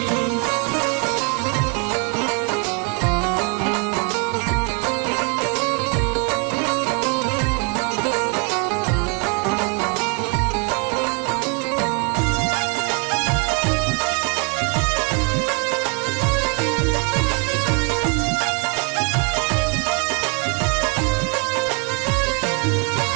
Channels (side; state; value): left; quieter; 36.2 dB